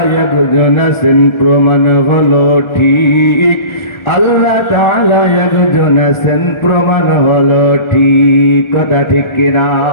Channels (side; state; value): right; late; 1.4 ms